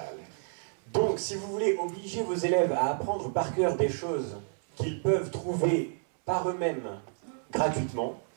Donc, si vous voulez obliger vos élèves à apprendre par cœur des choses qu'ils peuvent trouver par eux-mêmes gratuitement,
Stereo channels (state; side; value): silent; left; 58 dB below the other